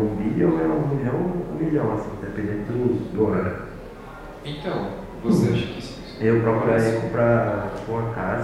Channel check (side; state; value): both; identical; correlation 1.00